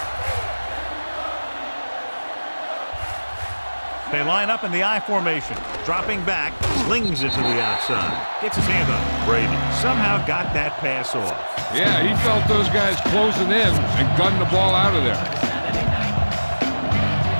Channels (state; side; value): inverted; both; correlation -1.00